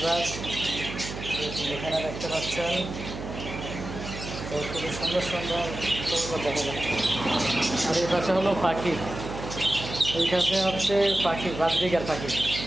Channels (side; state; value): right; noise; hum, 9 dB below the sound